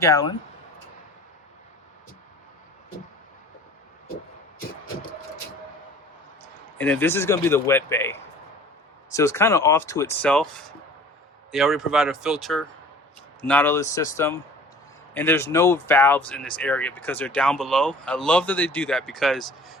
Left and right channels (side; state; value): both; normal; correlation 0.47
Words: And then this is gonna be the wet bay. So it's kind of off to itself. They already provide a filter, Nautilus system, and there's no valves in this area because they're down below. I love that they do that because